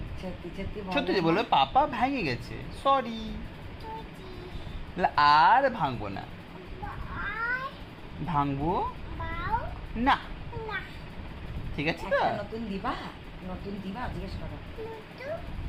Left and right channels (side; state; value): both; identical; correlation 1.00